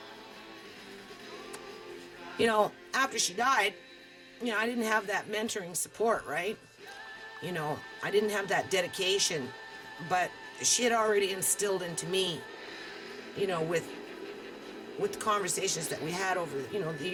after she died, I didn't have that mentoring support, right? I didn't have that dedication, but she had already instilled into me, with the conversations that we had over, the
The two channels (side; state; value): both; identical; correlation 1.00